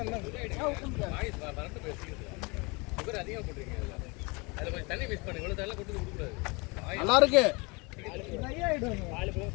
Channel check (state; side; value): quieter; right; 28.2 dB